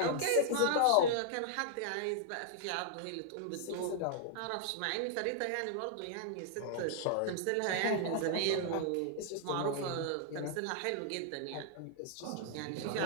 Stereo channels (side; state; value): both; different; correlation -0.01